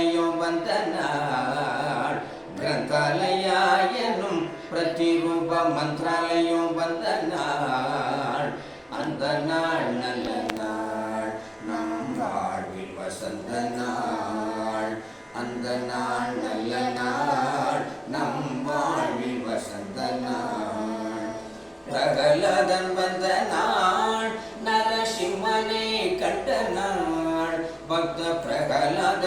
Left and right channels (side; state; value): both; identical; correlation 1.00